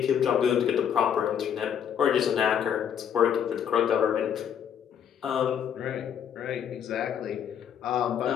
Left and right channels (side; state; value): right; quieter; 8.6 dB